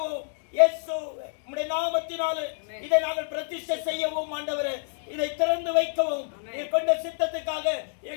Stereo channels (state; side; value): silent; right; digital silence